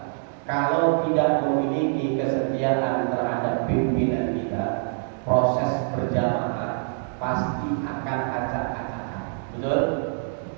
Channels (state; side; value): silent; left; digital silence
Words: kalau tidak memiliki kesetiaan terhadap pimpinan kita, proses berjamaah pasti akan acak-acakan. Betul?